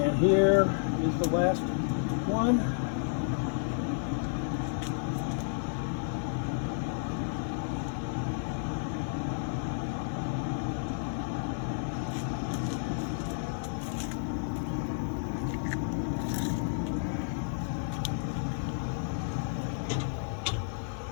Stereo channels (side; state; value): right; silent; digital silence